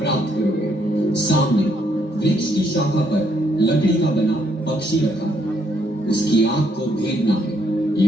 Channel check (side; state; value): both; normal; correlation 0.72